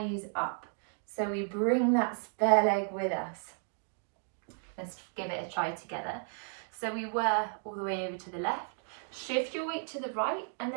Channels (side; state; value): left; silent; 55 dB below the other